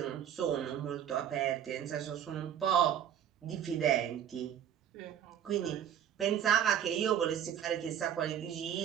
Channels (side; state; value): left; quieter; 9.7 dB